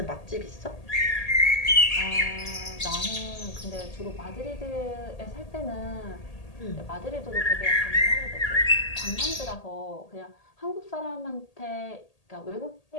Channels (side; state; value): right; late; 1.8 ms